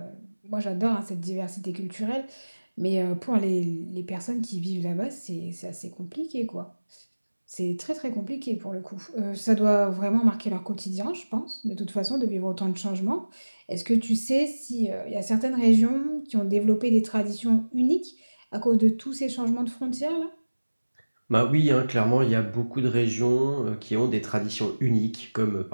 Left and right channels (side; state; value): both; inverted; correlation -1.00